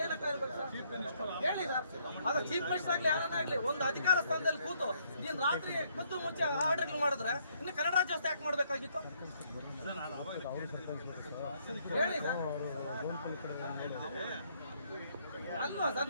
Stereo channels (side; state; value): both; inverted; correlation -0.68